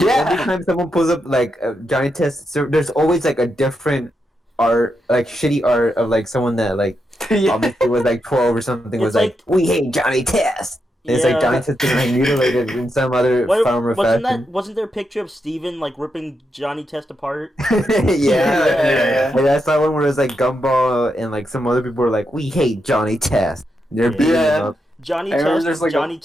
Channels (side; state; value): both; normal; correlation 0.84